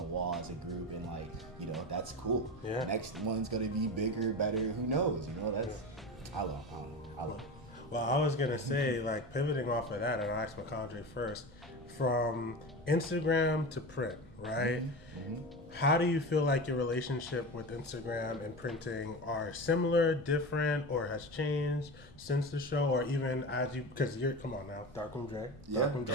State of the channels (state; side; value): normal; both; correlation 0.27